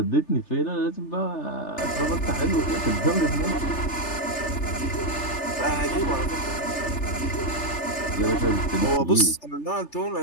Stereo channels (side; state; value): right; late; 3.3 ms